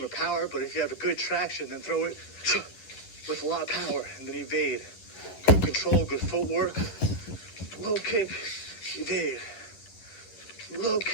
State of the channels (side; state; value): right; late; 11 ms